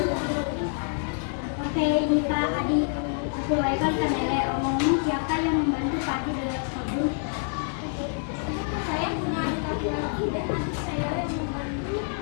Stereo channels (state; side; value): silent; right; 60 dB below the other